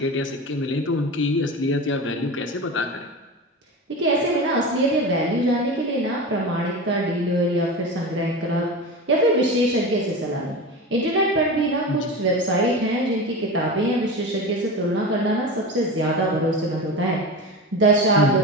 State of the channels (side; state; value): both; normal; correlation 0.27